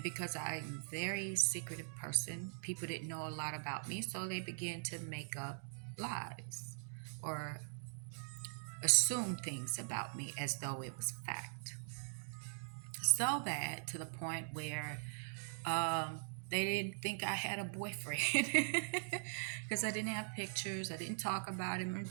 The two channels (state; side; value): silent; left; digital silence